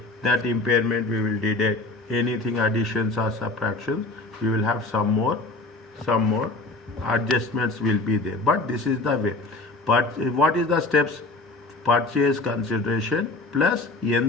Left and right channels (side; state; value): right; quieter; 3.1 dB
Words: that impairment we will deduct. Anything additions or subtractions, we will have some more adjustments will be there. But this is the way. But what is the steps? Purchase consideration plus